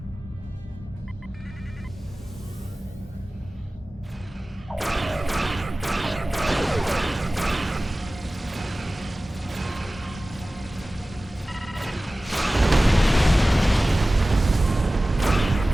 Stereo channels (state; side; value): normal; both; correlation 0.97